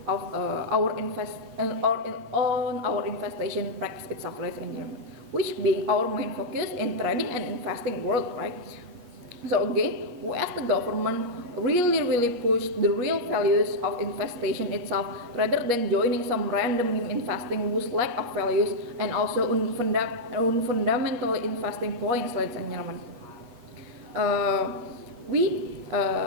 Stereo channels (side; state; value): left; late; 8.5 ms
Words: of our investment practice itself, ladies and gentlemen, which being our main focus in trading and investing world, right? So again, we as the government really push the real values of investation itself rather than joining some random investing whose lack of values and also fundamental investing points, ladies and gentlemen.